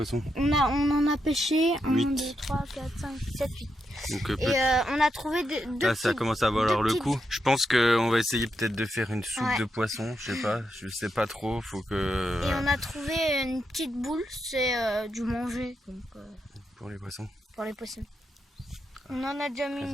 On en a pêché 8. 1, 2, 3, 4, 5, 7, 8. Donc, et on a trouvé deux là, ça commence à valoir le coup. Je pense qu'on va essayer peut-être de faire une soupe de poisson. Je sais pas trop. Faut que. Et on a trouvé une petite boule, c'est du manger. Donc, pour les poissons. Pour les poissons. On en a déjà mis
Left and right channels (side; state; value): both; normal; correlation 0.83